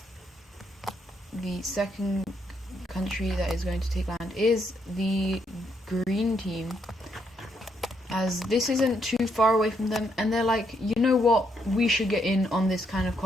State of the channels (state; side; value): normal; both; correlation 0.75